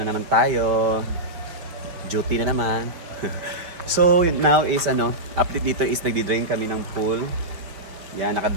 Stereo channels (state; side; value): late; left; 5.2 ms